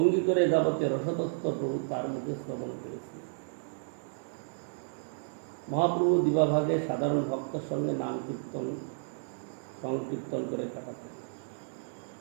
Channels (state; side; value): silent; left; digital silence